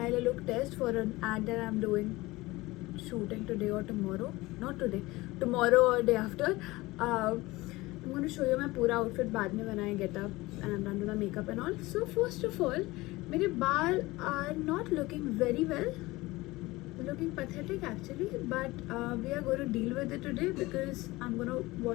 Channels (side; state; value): right; quieter; 20.4 dB